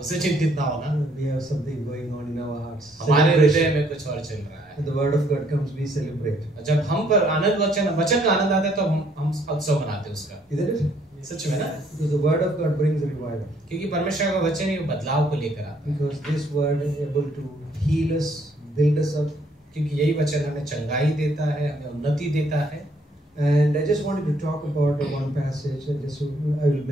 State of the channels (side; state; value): both; normal; correlation 0.66